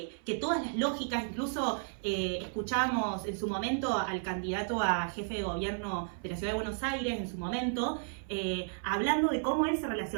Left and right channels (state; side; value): silent; left; 56 dB below the other